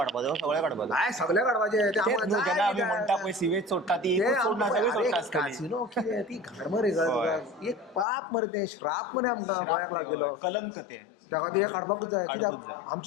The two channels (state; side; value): drops out; right; at 8.1 s